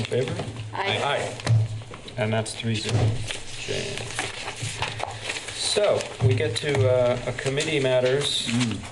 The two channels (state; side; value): identical; both; correlation 1.00